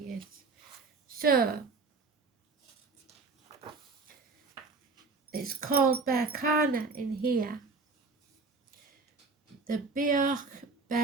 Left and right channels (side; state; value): left; quieter; 4.1 dB